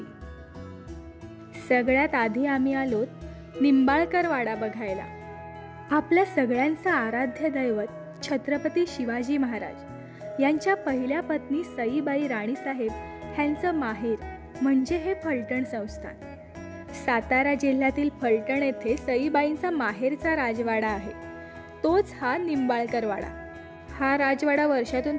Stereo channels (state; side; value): identical; both; correlation 1.00